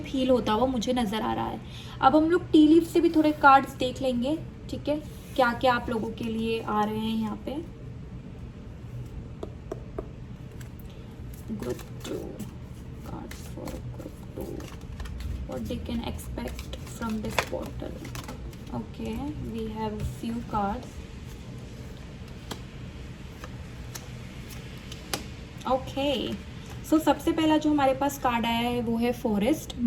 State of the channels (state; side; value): identical; both; correlation 1.00